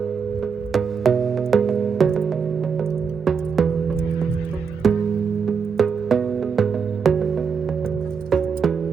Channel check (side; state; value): left; quieter; 6.0 dB